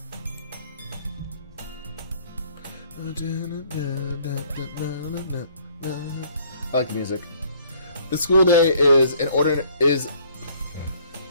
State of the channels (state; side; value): inverted; both; correlation -0.61